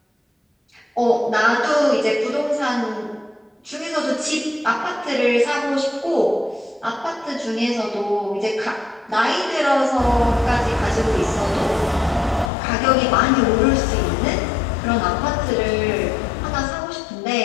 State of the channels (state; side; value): drops out; right; at 12.5 s